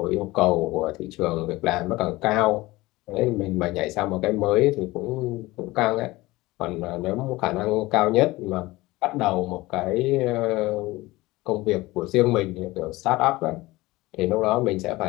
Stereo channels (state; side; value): quieter; right; 19.9 dB